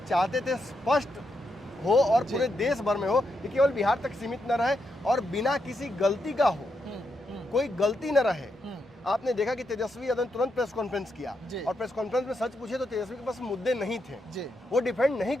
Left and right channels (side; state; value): both; normal; correlation 0.82